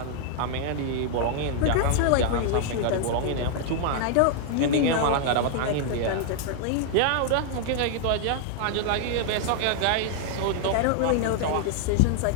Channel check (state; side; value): different; both; correlation 0.00